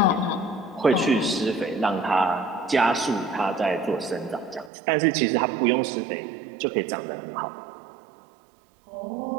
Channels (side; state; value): left; drops out; at 4.7 s